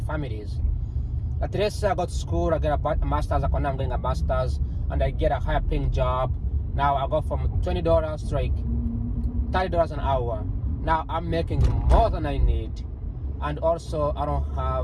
families. Like let's say I go to school, I get a master's, I'm getting a master's, and I get a higher paying job. Now I go from $20 to like $30 an hour. Now I'm making more than I need, and also I don't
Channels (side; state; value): both; identical; correlation 1.00